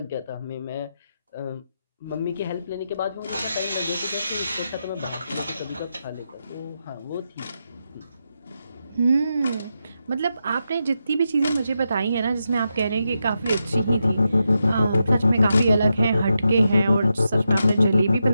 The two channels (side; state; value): both; inverted; correlation -0.86